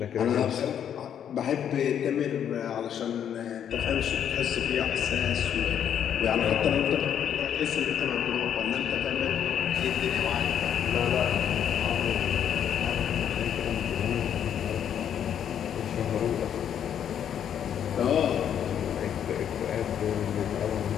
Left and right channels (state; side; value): quieter; right; 9.1 dB